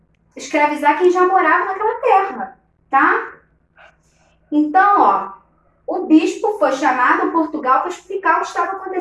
escravizar quem já morava naquela terra, tá? Então, ó, o bispo foi chamado a Portugal para explicar o que estava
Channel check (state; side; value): identical; both; correlation 1.00